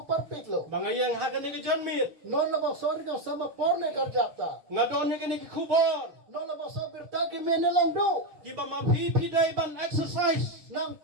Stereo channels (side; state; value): left; late; 6.6 ms